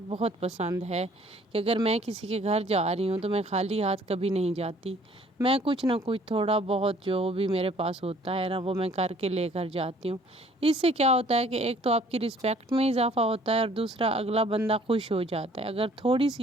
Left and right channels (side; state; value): both; normal; correlation 0.57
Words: بہت پسند ہے کہ اگر میں کسی کے گھر جا رہی ہوں تو میں خالی ہاتھ کبھی نہیں جاتی، میں کچھ نہ کچھ تھوڑا بہت جو بھی میرے پاس ہوتا ہے وہ میں کر کے لے کر جاتی ہوں۔ اس سے کیا ہوتا ہے کہ ایک تو آپ کی رسپیکٹ میں اضافہ ہوتا ہے اور دوسرا اگلا بندہ خوش ہو جاتا ہے۔ اگر تھوڑی